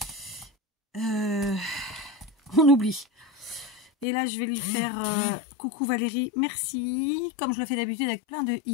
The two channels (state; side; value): drops out; right; at 4.0 s